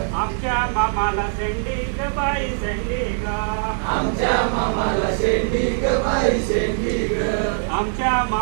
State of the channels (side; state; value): left; silent; 65 dB below the other